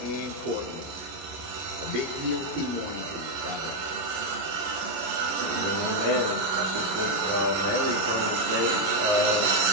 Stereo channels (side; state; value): left; late; 11 ms